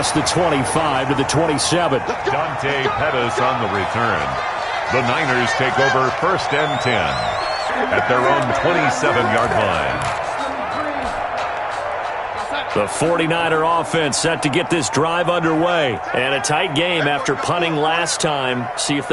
the 25 to the 27. Dante Pettis on the return. The Niners take over 1st and 10 at their own 27-yard line. The 49er offense set to get this drive underway. And a tight game after punting last time. See if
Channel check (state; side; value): identical; both; correlation 1.00